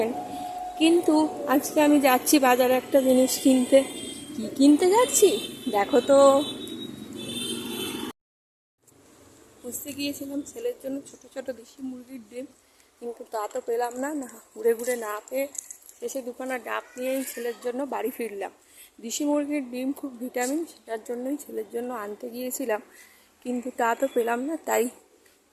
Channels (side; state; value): both; identical; correlation 1.00